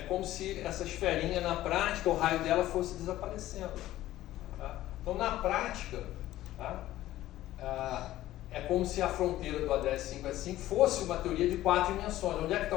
como se essa esferinha na prática, o raio dela fosse desaparecendo. Tá? Então na prática, tá, é como se a fronteira do ADS 5S5 fosse uma teoria de 4 dimensões. Onde é que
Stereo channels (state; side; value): quieter; right; 14.7 dB